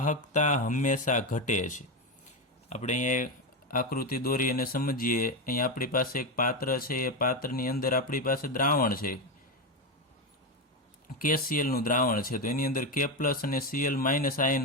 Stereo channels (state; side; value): normal; both; correlation 0.12